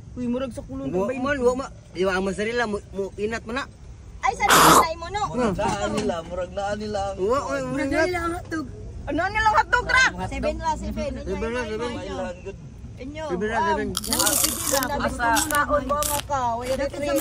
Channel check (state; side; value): identical; both; correlation 1.00